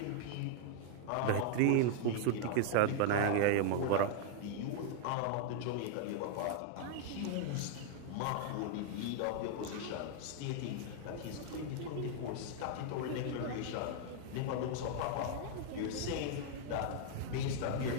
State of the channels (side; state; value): both; different; correlation 0.00